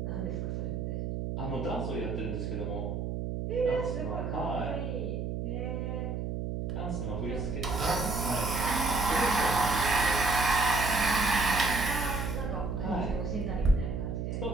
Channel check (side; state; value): right; noise; hum, 3 dB below the sound